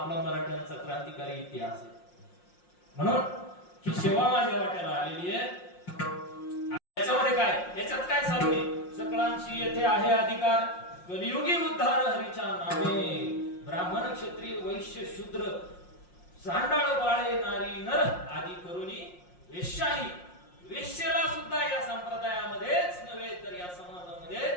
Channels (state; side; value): late; right; 5.6 ms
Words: मराठ्यांचा क्रांतिकारी इतिहास आहे. म्हणून ही सेवा माझ्या वाट्याला आलेली आहे. याच्यामध्ये काय, याच्यात काय सांगणे, सकळांशी येथे आहे अधिकार, कलियुगी उद्धार हरीच्या नामे. ब्राह्मण, क्षत्रिय, वैश्य, शूद्र, चांडाळ, बाळे, नारी, नर आदी करुणी वेश्याही. वेश्येला सुद्धा या संप्रदायामध्येच नव्हे तर या समाजामध्ये